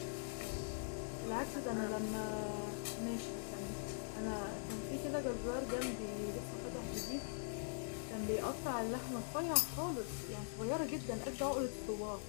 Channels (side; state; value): right; silent; digital silence